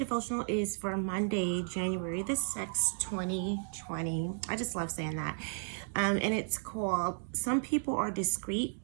is for Monday, January the 6th, 2020. I just love saying that. And it's called, Some People Are Discreet,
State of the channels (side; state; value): left; silent; digital silence